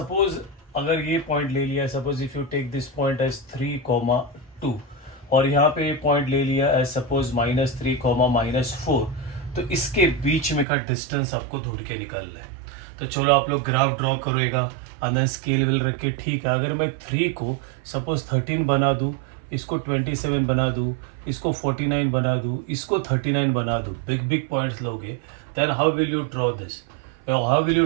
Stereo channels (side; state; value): left; drops out; at 10.7 s